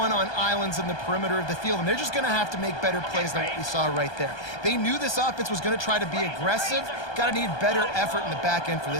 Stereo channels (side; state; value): right; late; 1.2 ms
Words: on islands in the perimeter of the field, and they're just going to have to make better plays than what we saw right there. They knew this offense was going to try to be aggressive. Got to need better effort in the back end for